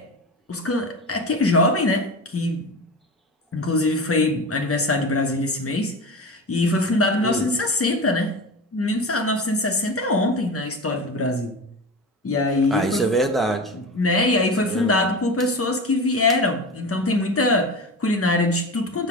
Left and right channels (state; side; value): normal; both; correlation 0.28